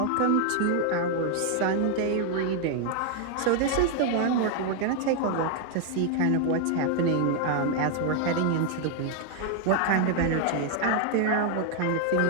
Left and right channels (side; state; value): both; different; correlation 0.00